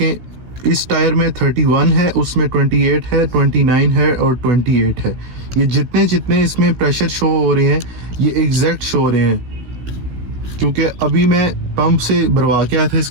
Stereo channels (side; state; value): left; late; 16 ms